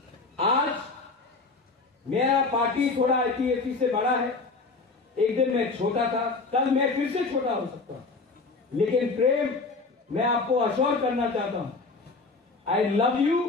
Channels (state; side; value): quieter; right; 3.9 dB